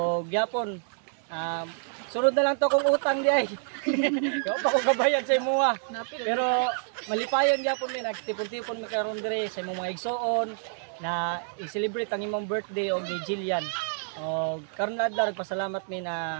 gyapon sunod na lang to kung utang di ay. Yo pa ko kabayan sa imong. Pero malipayon gyapon mi nagtipon-tipon mi karon dire sa imong mga igsoon na i-celebrate ang imong birthday og ni Jillian. Og karon adlaw nagpasalamat mi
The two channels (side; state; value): left; silent; digital silence